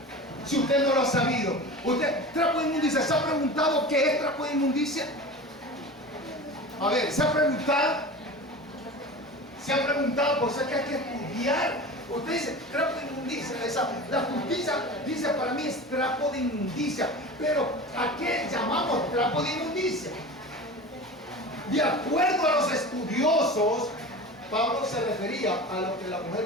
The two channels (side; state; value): both; normal; correlation 0.33